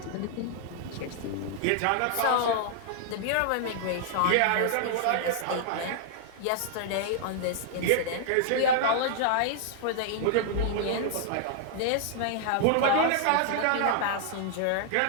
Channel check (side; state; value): both; different; correlation -0.01